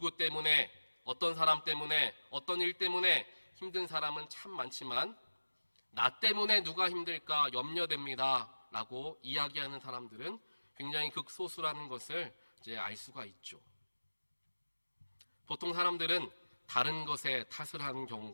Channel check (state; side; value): inverted; both; correlation -1.00